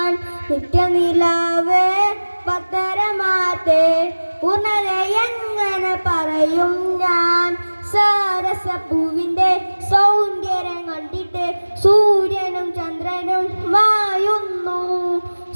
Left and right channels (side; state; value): both; inverted; correlation -1.00